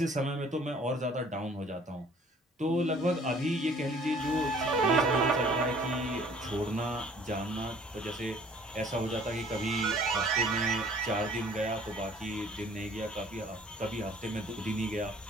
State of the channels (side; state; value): both; normal; correlation 0.55